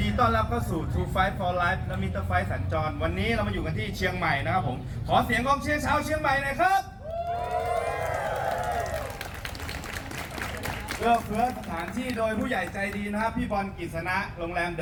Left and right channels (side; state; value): both; identical; correlation 1.00